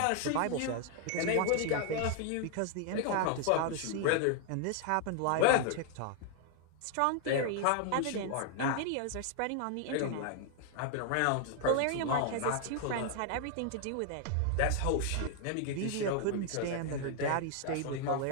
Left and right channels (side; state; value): both; different; correlation 0.00